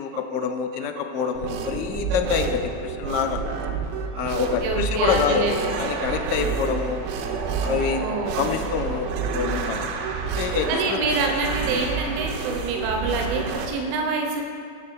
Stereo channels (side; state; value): left; late; 39 ms